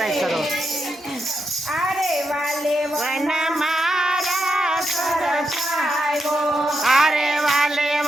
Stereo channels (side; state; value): both; normal; correlation 0.85